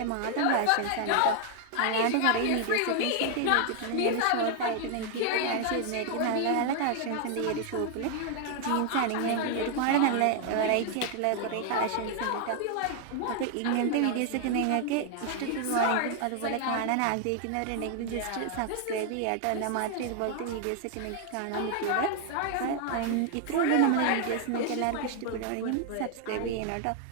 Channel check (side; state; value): both; different; correlation 0.00